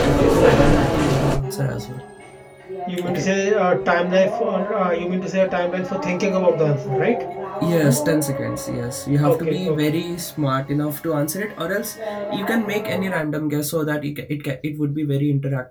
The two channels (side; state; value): both; identical; correlation 1.00